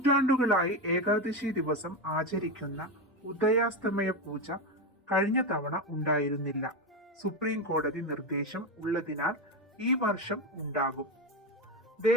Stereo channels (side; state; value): both; normal; correlation 0.14